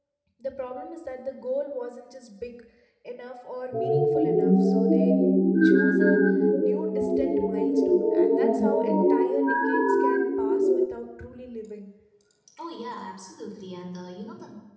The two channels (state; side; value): identical; both; correlation 1.00